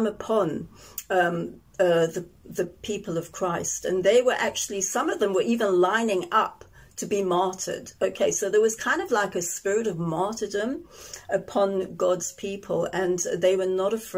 upon the people of Christ, and they were actually, some of them were even lining up to be martyred. Okay, so there was kind of like a spirit of martyrdom upon God's people, and they were not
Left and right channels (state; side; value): identical; both; correlation 1.00